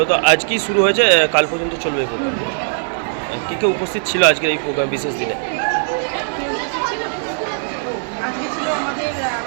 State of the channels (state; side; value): silent; left; digital silence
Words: আজকেই শুরু হয়েছে, কাল পর্যন্ত চলবে এই প্রোগ্রাম। কে কে উপস্থিত ছিল আজকের এই প্রোগ্রাম বিশেষ দিনে? কে উপস্থিত ছিল? ও আজকে ছিল